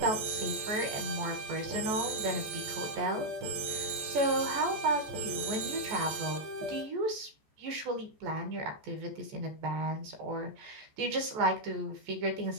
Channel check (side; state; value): left; late; 14 ms